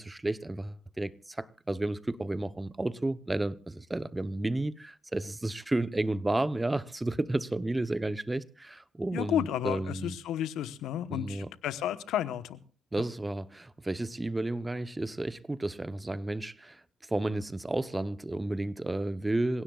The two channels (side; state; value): both; normal; correlation 0.88